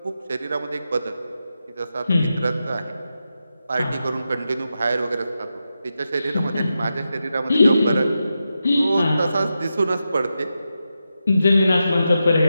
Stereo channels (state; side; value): inverted; both; correlation -0.89